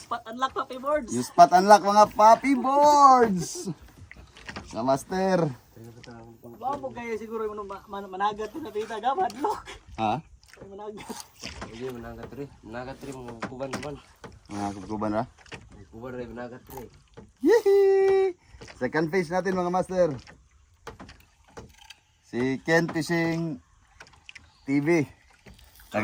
unlock, papi boards. Yung spot unlock mga puppy boards. Sa master. Bawa mo kayo siguro yung managat na pita gabad lock. Ha? Managat. Hindi managat rin. Managat rin mo kuban kuban. Mga kuban ra. Kuban rin managat rin. Yee! Second fish natin mga master. Si Ken Fishing TV.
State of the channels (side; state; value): both; identical; correlation 1.00